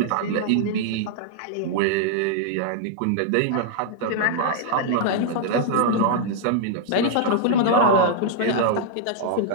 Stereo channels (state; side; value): different; both; correlation -0.01